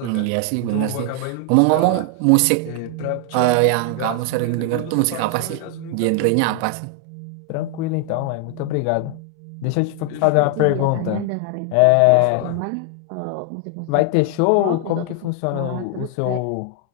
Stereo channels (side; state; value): both; different; correlation 0.00